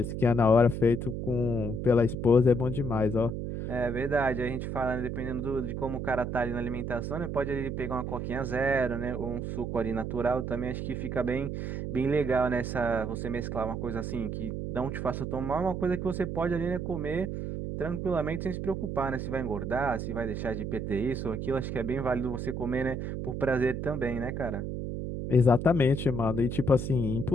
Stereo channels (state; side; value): noise; right; hum, 4 dB below the sound